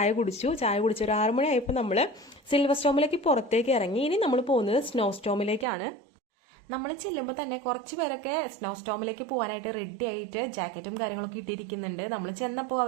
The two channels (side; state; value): left; drops out; at 5.7 s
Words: കുടിച്ചു ഒരു 6 മണിയായപ്പോൾ നമ്മൾ സിൽവർ സ്റ്റോമിലേക്ക് പുറത്തേക്ക് ഇറങ്ങി. ഇനി നമ്മൾ പോകുന്നത് സ്നോ സ്റ്റോമിലേക്കാണ്. നമ്മൾ ചെല്ലുമ്പോൾ തന്നെ കുറച്ച് പേരൊക്കെ സ്നോ സ്റ്റോമിലേക്ക് പോകാനായിട്ട് റെഡി ആയിട്ട് ജാക്കറ്റും കാര്യങ്ങളൊക്കെ ഇട്ടിരിക്കുന്നുണ്ട്. നമ്മൾ ചെന്നപ്പോൾ